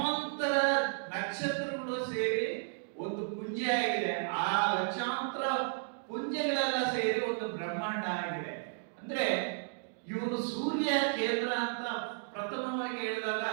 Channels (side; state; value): left; silent; digital silence